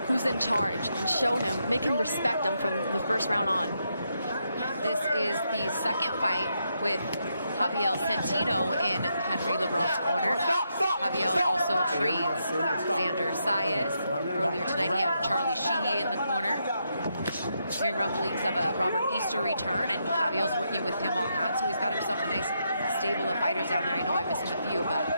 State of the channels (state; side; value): inverted; both; correlation -0.81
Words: who's in charge and show him, make him respect him from the first round on. This is the second fight with Javier Centino in Henry LeBron's corner. Javier also trains Xander Saez. Earlier tonight he had Charlie Sheehy in the corner. Hearing rumblings of a Robert Easter return, and Javier's working with him on that, so he's got himself a nice stable of fighters down there. I know I'm missing a few, but